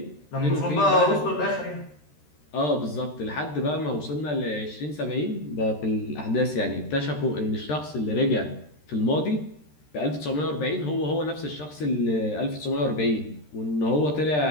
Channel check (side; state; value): right; late; 13 ms